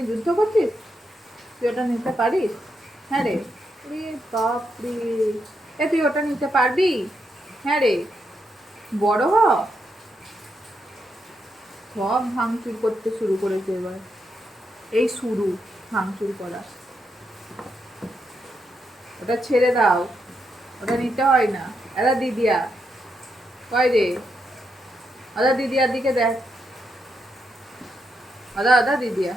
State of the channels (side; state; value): both; normal; correlation 0.82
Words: যুদ্ধ করছিস? তুই ওটা নিতে পারিস? হ্যাঁ রে। রে বাপরে, এ তুই ওটা নিতে পারবি? হ্যাঁ রে, বড় হ। সব ভাঙচুর করতে শুরু করেছে এবার। এই শুরু ভাঙচুর করা। ওটা ছেড়ে দাও, ওটা নিতে হয় না। এরা দিদিয়া কয় রে? আদা দিদিয়ার দিকে দেখ। আদা আদা দিদিয়া,